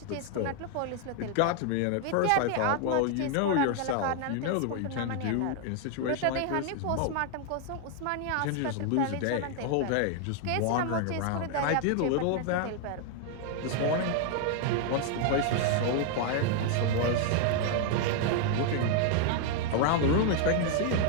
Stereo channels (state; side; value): different; both; correlation 0.00